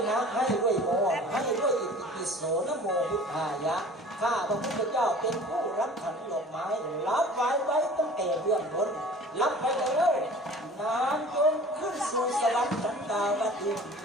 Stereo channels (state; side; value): normal; both; correlation 0.44